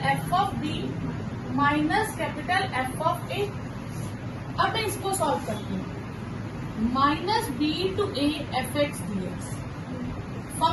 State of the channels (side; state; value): both; identical; correlation 1.00